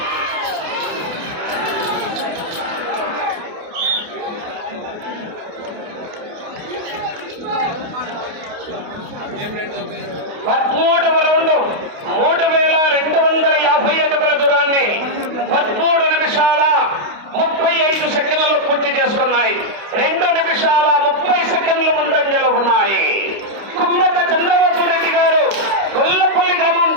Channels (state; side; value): late; left; 29 ms